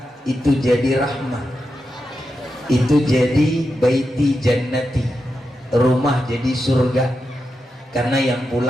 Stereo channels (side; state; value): both; normal; correlation 0.88